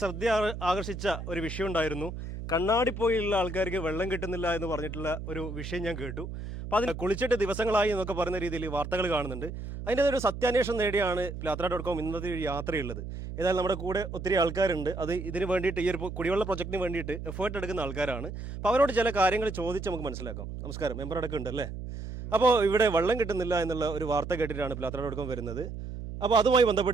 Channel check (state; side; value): noise; right; hum, 8 dB below the sound